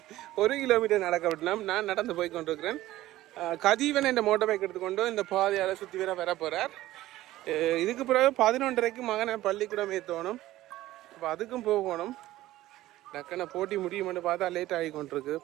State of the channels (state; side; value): quieter; left; 15.7 dB